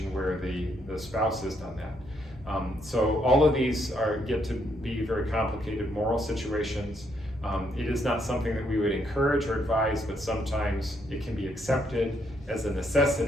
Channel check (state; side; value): normal; both; correlation 0.74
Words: where the spouse has done that. So all of these get to be very complicated moral situations. It is not something that we would encourage or advise, but sometimes it can be accepted as a